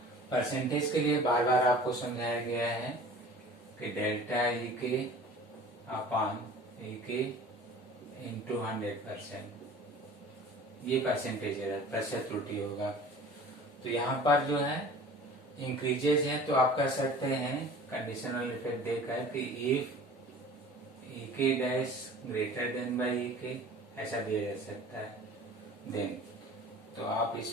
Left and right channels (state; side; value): normal; both; correlation 0.44